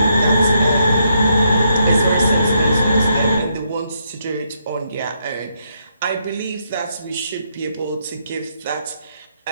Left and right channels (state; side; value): inverted; both; correlation -0.77